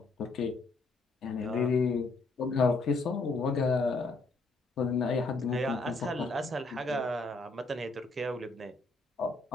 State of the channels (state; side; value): quieter; right; 3.4 dB